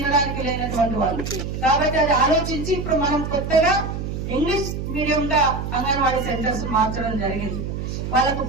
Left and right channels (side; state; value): right; noise; hum, 5 dB below the sound